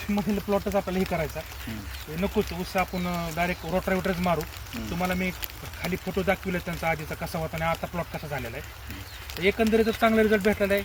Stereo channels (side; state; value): both; identical; correlation 1.00